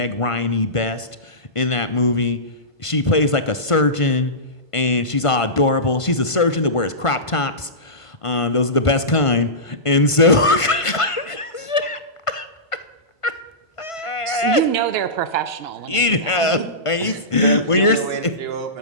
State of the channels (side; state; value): right; late; 1.5 ms